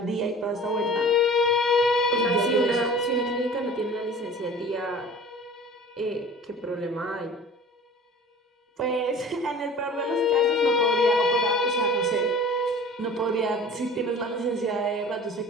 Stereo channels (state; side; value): normal; both; correlation 0.43